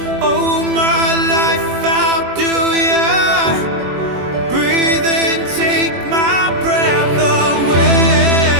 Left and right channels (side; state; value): left; late; 21 ms